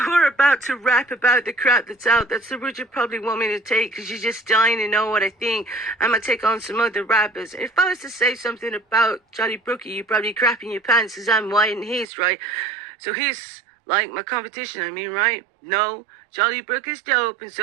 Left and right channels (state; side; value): drops out; left; at 12.1 s